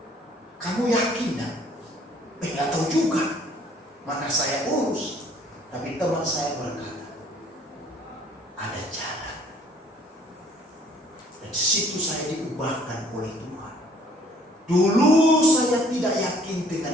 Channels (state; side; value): normal; both; correlation 0.59